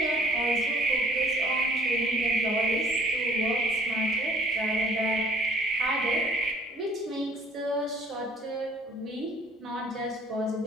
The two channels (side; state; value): both; normal; correlation 0.56